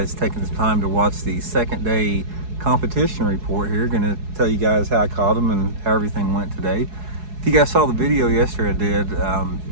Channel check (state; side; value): late; left; 4.7 ms